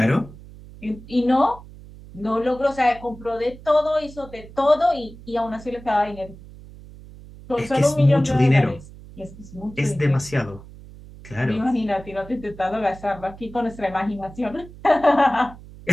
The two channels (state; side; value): noise; right; hum, 18 dB below the sound